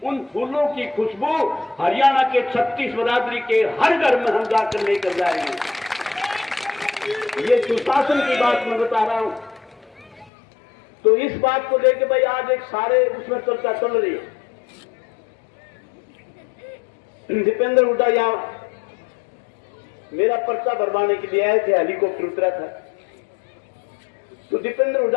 उन फूलों की खुशबू हरियाणा के 36 बरादरी के हर घर में हम जाकर लेकर जाएंगे। ये सुशासन की बात मैं बता रहा हूं। तो इस बात को लेकर भाई आज एक सारे उसमें चर्चा चल रही है। दीपेंद्र हुड्डा यहां मेरा पर्चा भरवाने के लिए आए थे, हेलीकॉप्टर उतरा था। तो दीपेंद्र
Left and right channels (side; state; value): right; drops out; at 10.3 s